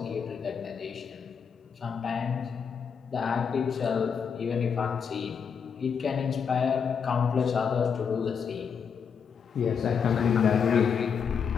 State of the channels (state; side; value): quieter; right; 6.6 dB